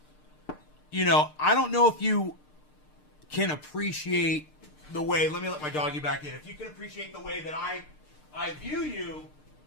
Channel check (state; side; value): late; right; 6.6 ms